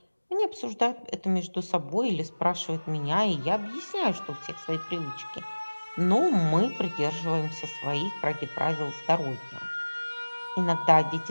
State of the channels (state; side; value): inverted; both; correlation -1.00